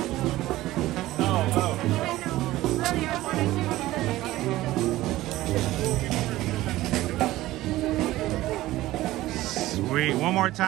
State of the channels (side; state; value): left; quieter; 16.5 dB